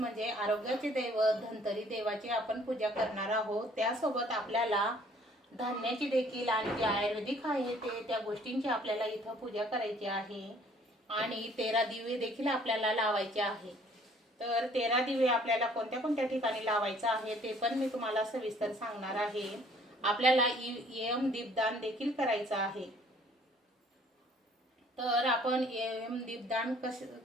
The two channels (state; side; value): normal; both; correlation 0.58